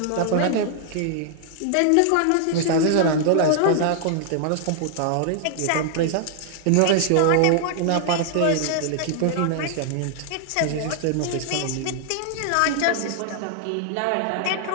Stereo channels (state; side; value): different; both; correlation -0.01